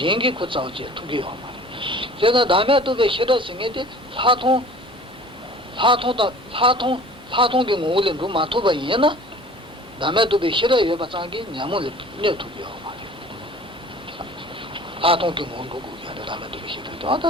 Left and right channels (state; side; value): normal; both; correlation 0.46